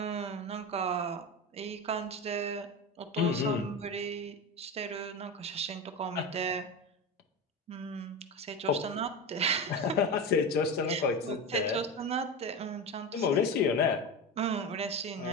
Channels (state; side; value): normal; both; correlation 0.22